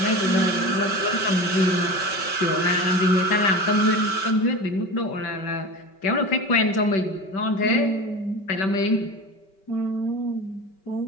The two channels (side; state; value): right; late; 5.2 ms